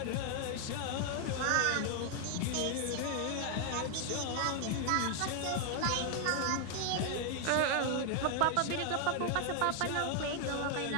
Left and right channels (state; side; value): different; both; correlation 0.00